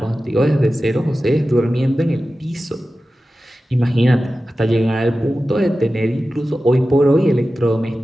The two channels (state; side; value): normal; both; correlation 0.94